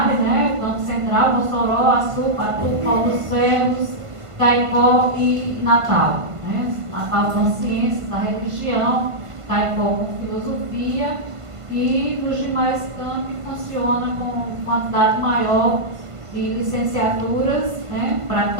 né? O campo central, Mossoró, Açu, Patu, Paulo dos Ferros, Caicó e Natal. Né? Natal com ciências da religião, Caicó com filosofia, e nos demais campi funciona com quantidade maior de licenciaturas, né?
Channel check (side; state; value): left; late; 1.5 ms